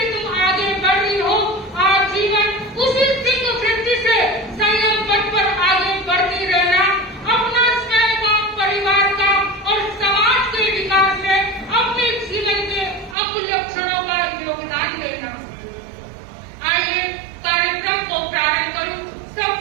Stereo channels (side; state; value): left; drops out; at 13.2 s